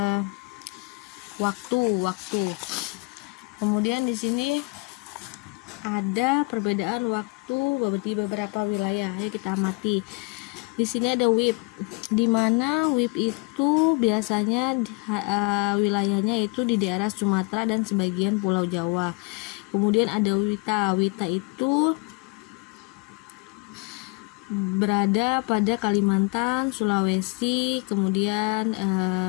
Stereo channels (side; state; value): right; quieter; 28.6 dB